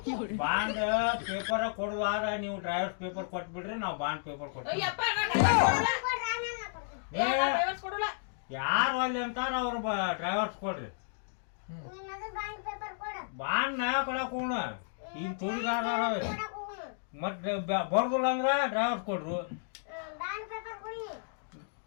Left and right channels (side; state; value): right; silent; digital silence